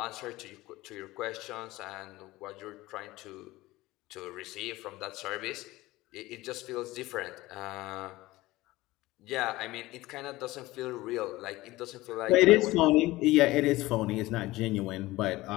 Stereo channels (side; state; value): right; quieter; 18.7 dB